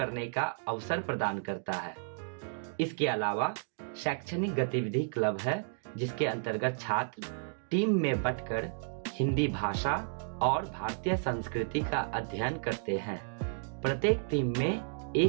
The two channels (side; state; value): left; silent; digital silence